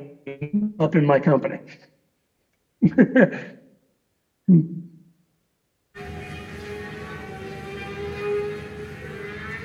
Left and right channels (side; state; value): both; identical; correlation 1.00